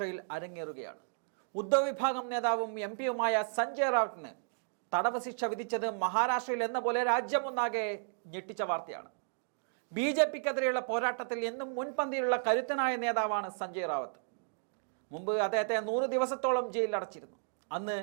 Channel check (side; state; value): left; silent; digital silence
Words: അരങ്ങേറുകയാണ്. ഉദ്ധവ് വിഭാഗം നേതാവും എം പിയുമായ സഞ്ജയ് റാവത്തിന് തടവ് ശിക്ഷ വിധിച്ചത് മഹാരാഷ്ട്രയിൽ എന്ന പോലെ രാജ്യമൊന്നാകെ ഞെട്ടിച്ച വാർത്തയാണ്. BJPക്കെതിരെയുള്ള പോരാട്ടത്തിൽ എന്നും മുൻപന്തിയിലുള്ള കരുത്തനായ നേതാവാണ് സഞ്ജയ് റാവത്ത്. മുമ്പ് അദ്ദേഹത്തെ 100 ദിവസത്തോളം ജയിലിൽ അടച്ചിരുന്നു. അന്ന്